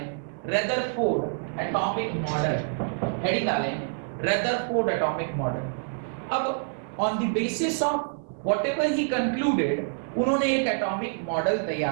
रदरफोर्ड एटॉमिक मॉडल, हेडिंग डालें रदरफोर्ड एटॉमिक मॉडल। अब on the basis of whatever he concluded, उन्होंने एक एटॉमिक मॉडल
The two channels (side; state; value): left; silent; 56 dB below the other